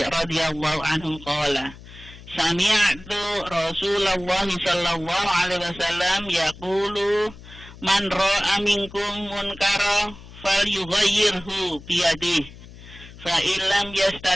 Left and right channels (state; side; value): noise; left; hum, 18 dB below the sound